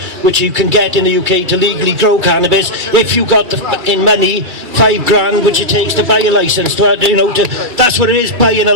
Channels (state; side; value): late; left; 2.3 ms